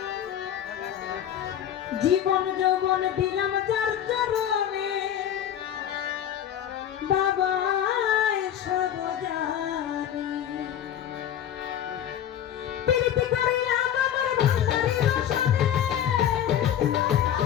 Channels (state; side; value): quieter; right; 10.3 dB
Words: যৌবন দিলাম যার চরণে বাবা